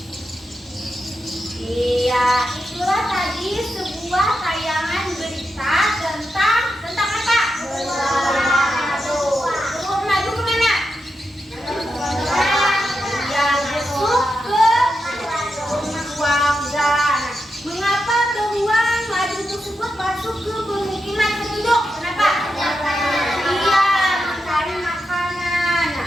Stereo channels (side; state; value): both; normal; correlation 0.87